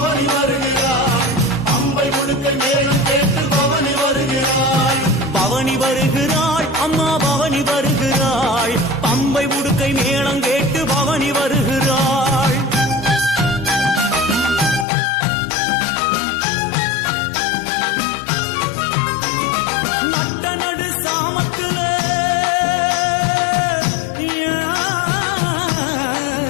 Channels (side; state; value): right; drops out; at 14.9 s